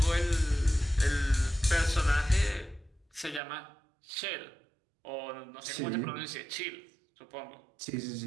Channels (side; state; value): left; drops out; at 3.4 s